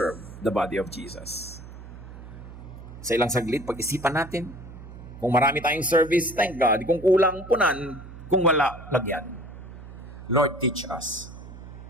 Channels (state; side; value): noise; right; hum, 14 dB below the sound